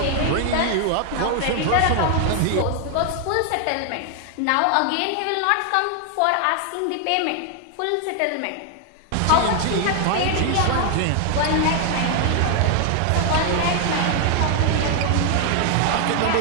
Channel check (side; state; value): both; different; correlation 0.00